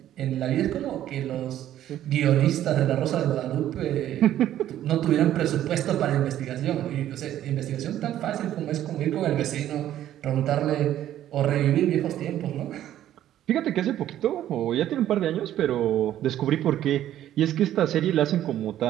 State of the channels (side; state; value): left; quieter; 12.1 dB